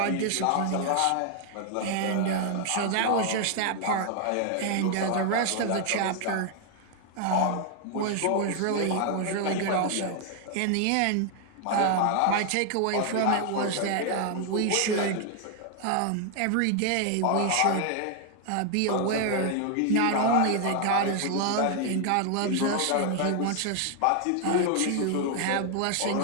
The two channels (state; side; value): different; both; correlation 0.00